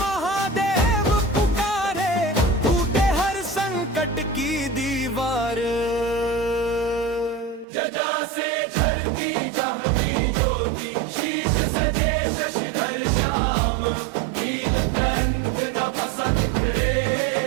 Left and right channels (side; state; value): left; drops out; at 7.7 s